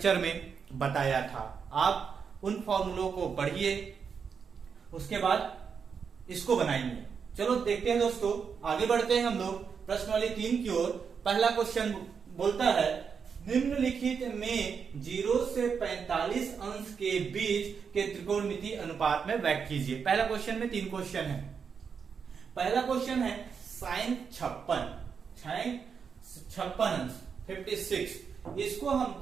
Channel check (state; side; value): quieter; left; 6.3 dB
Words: में बताया था। आप उन फॉर्मूलों को पढ़िए, उसके बाद इसको बनाएंगे। चलो देखते हैं दोस्तों, आगे बढ़ते हैं हम लोग प्रश्नवाली 3 की ओर। पहला क्वेश्चन बोलता है निम्नलिखित में 0 से 45 अंश के बीच के त्रिकोणमिति अनुपात में व्यक्त कीजिए। पहला क्वेश्चन में 3 क्वेश्चन है। पहला क्वेश्चन है साइन 56 अंश 56, इसको